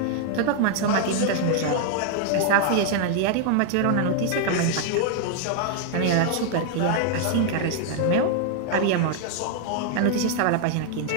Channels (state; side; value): different; both; correlation 0.00